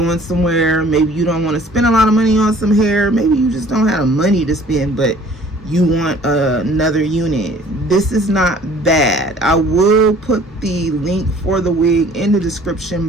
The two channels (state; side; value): normal; both; correlation 0.53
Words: somewhere, maybe you don't want to spend a lot of money on some hair, maybe you just don't have the money to spend, but you want another unit, this is not bad. I will put the link for the wig in the description